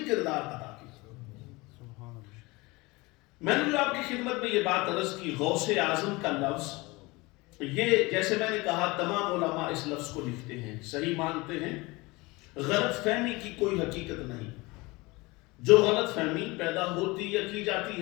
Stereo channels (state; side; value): quieter; right; 23.5 dB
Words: کردار ادا کیا۔ میں نے جو آپ کی خدمت میں یہ بات عرض کی، غوث اعظم کا لفظ، یہ جیسے میں نے کہا تمام علماء اس لفظ کو لکھتے ہیں، صحیح مانتے ہیں، غلط فہمی کی کوئی حقیقت نہیں، جو غلط فہمی پیدا ہوتی یا کی جاتی